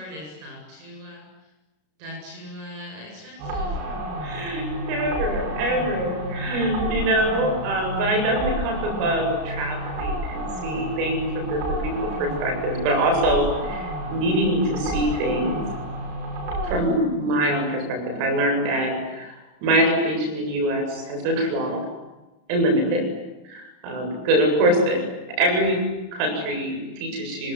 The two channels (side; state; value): left; late; 33 ms